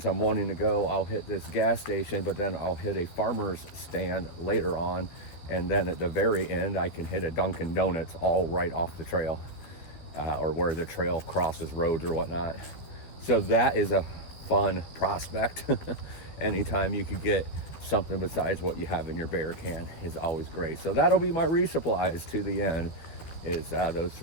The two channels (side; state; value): right; late; 12 ms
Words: I'm wanting to go, I'll hit this gas station, but then I'll hit a farmer's stand later on. And then at the very end, I can hit a Dunkin' Donuts all right off the trail or where the trail crosses roads or whatnot. So that is a fun prospect. Anytime you could get something besides what you have in your bear can is always great. So that'll be my resupplies to the end is those